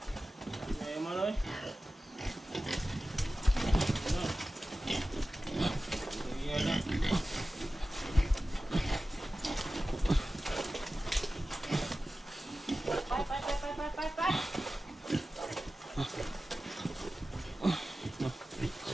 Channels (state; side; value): normal; both; correlation 0.94